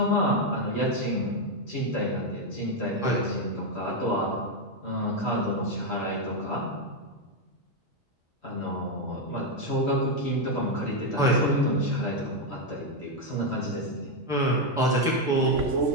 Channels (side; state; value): both; normal; correlation 0.04